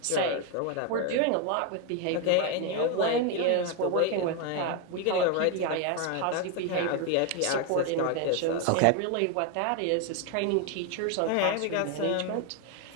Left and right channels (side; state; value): both; different; correlation 0.01